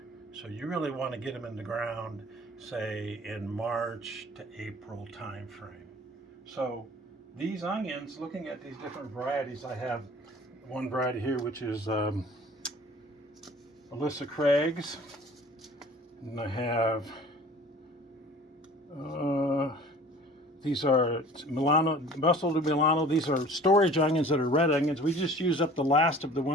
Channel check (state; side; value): normal; both; correlation 0.47